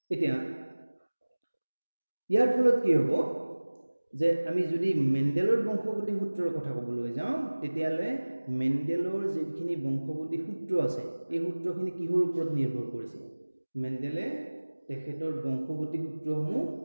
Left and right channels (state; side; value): inverted; both; correlation -1.00